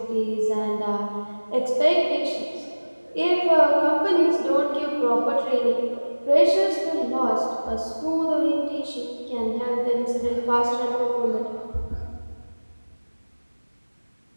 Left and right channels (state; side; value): inverted; both; correlation -1.00